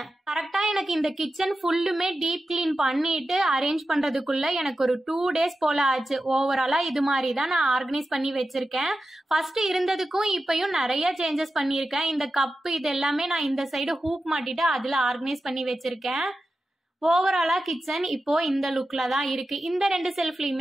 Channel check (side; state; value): both; normal; correlation 0.92